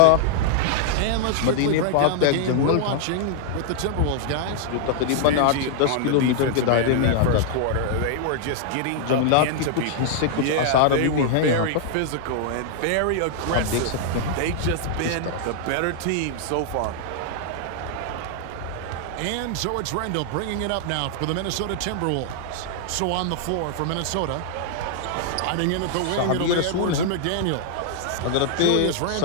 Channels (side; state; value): both; different; correlation -0.01